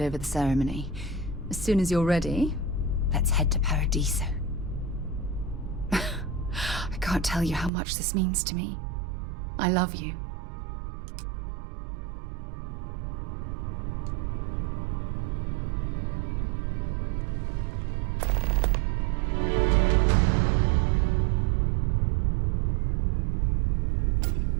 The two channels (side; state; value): left; drops out; at 7.7 s